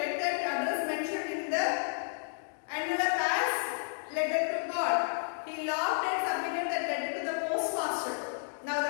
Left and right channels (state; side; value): silent; right; digital silence